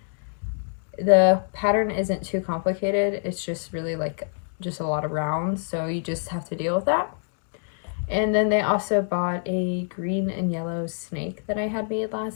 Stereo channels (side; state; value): right; silent; digital silence